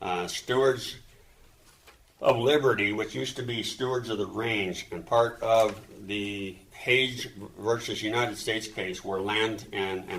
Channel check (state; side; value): identical; both; correlation 1.00